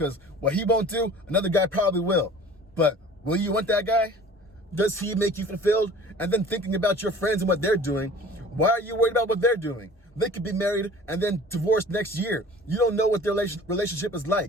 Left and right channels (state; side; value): normal; both; correlation 0.45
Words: what he won't do, another guy probably will. But will you want that guy? Does he make you fulfilled? And then thinking about your friends and what they're doing, why are you worried about what they're doing? They could be married and then divorced next year. You don't know what their relationship is